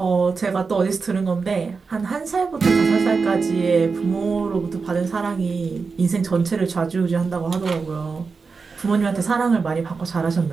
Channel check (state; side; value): quieter; left; 4.8 dB